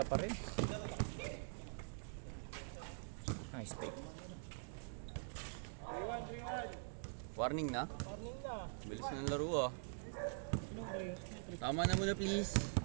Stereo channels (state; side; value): silent; left; digital silence